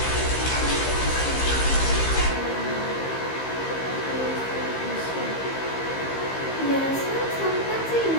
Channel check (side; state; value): right; late; 15 ms